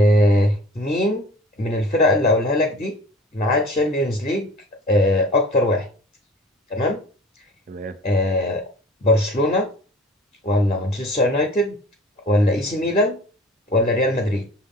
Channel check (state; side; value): normal; both; correlation 0.45